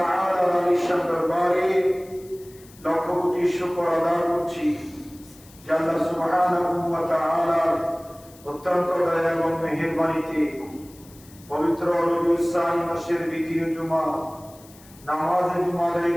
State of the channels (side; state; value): left; noise; hiss, 24 dB below the sound